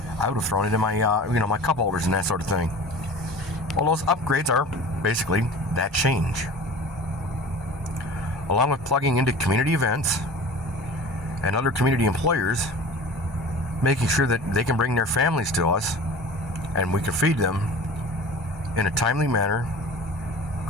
I would have thrown it in my my cup holders and that sort of thing. Well, those upgrades are basically that change, along with plugging into community events and other community employers, making sure that they can bring their families to us and we can feed them in a timely manner,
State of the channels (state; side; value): normal; both; correlation 0.39